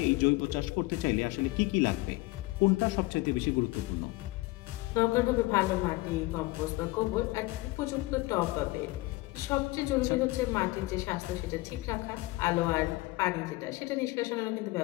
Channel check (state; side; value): quieter; right; 21.0 dB